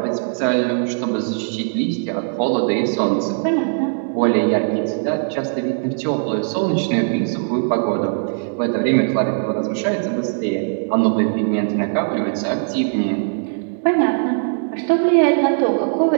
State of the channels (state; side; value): silent; left; digital silence